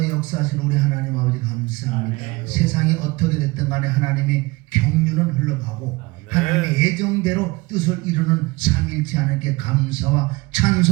역사하신 우리 하나님 아버지 감사합니다. 세상이 어떻게 됐든 간에 하나님의 경륜은 흘러가고 하나님의 예정대로 뜻을 이루는 삼일치 하나님께 감사와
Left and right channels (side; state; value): left; quieter; 23.0 dB